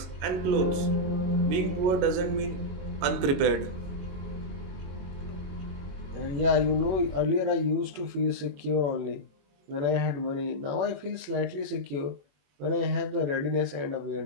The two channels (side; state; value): left; late; 22 ms